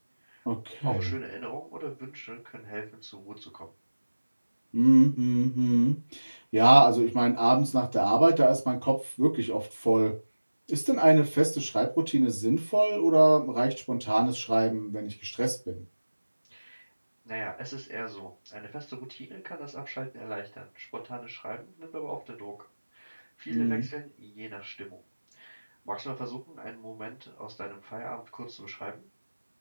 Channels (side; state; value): both; inverted; correlation -1.00